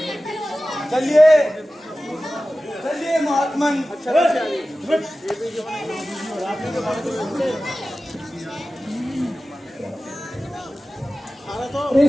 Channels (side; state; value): both; normal; correlation 0.95